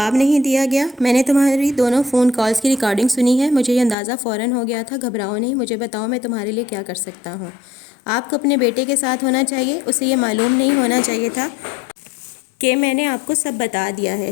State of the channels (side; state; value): right; drops out; at 4.0 s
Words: نہیں دیا گیا۔ میں نے تمہاری دونوں فون کالز کی ریکارڈنگ سنی ہے، مجھے یہ اندازہ فوراً ہو گیا تھا۔ گھبراؤ نہیں، مجھے بتاؤ میں تمہارے لیے کیا کر سکتا ہوں۔ آپ کو اپنے بیٹے کے ساتھ ہونا چاہیے، اسے یہ معلوم نہیں ہونا چاہیے تھا کہ میں نے آپ کو سب بتا دیا ہے۔